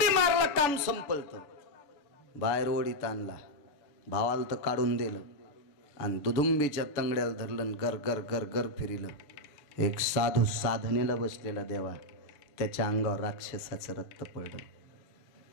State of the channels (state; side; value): late; right; 6.8 ms